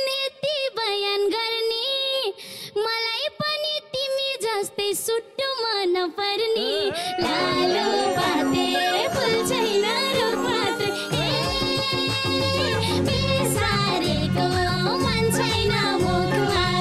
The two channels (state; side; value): identical; both; correlation 1.00